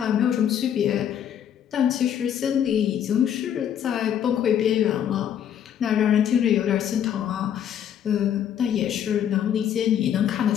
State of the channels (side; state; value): right; quieter; 9.5 dB